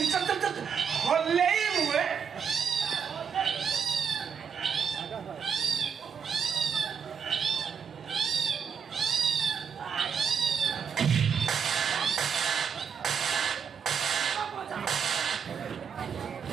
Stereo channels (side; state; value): left; quieter; 6.9 dB